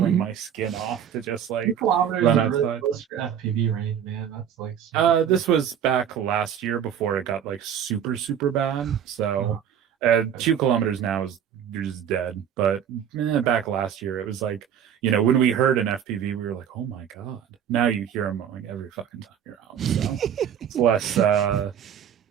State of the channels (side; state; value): left; quieter; 8.9 dB